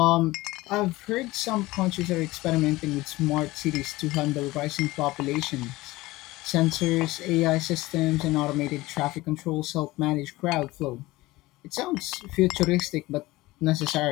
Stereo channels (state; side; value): quieter; right; 19.4 dB